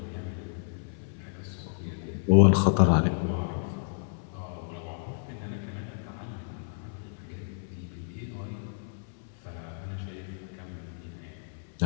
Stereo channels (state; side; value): silent; right; 57 dB below the other